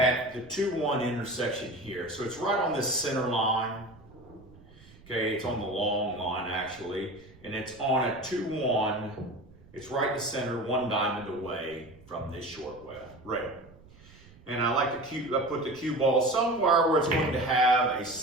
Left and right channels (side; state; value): right; noise; rumble, 23 dB below the sound